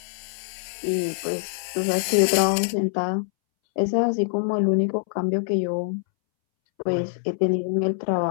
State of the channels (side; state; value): right; silent; 62 dB below the other